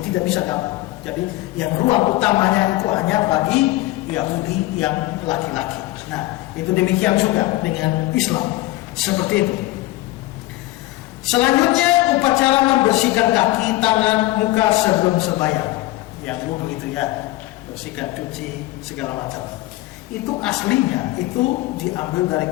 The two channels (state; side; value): quieter; right; 18.2 dB